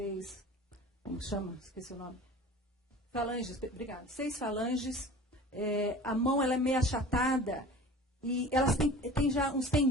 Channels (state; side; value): normal; both; correlation 0.40